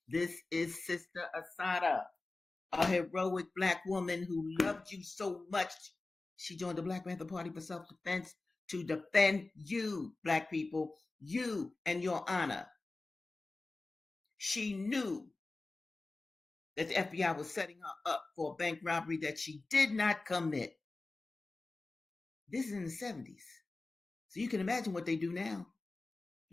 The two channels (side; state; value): right; quieter; 3.3 dB